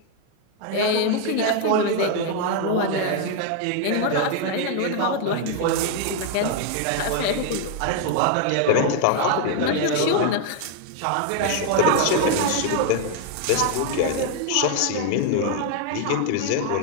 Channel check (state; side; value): different; both; correlation 0.00